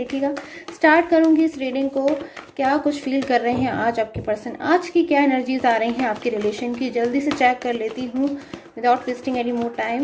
स्टार्ट करूँगी इस रीडिंग को। क्या कुछ फील कर रहे हैं आज आपके पर्सन, आज की क्या एनर्जीज आ रही हैं आपके रिलेशन की, जल्दी से चेक कर लेती हूँ without wasting any more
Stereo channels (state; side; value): identical; both; correlation 1.00